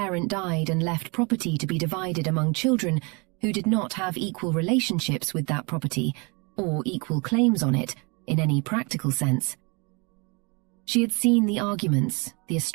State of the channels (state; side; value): quieter; left; 30.5 dB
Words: died and left property to be divided among children who did not have equal relationships with that property or equal claims on it in any practical sense. She had seen the arguments, the